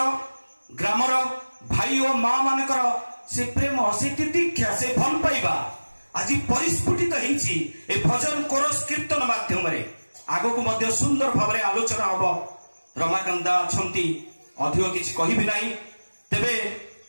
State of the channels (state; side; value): inverted; both; correlation -1.00